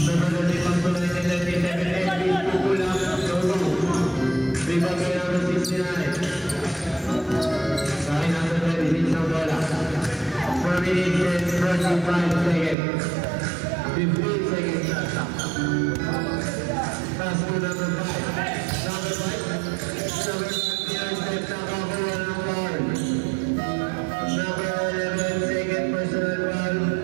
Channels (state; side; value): drops out; left; at 12.8 s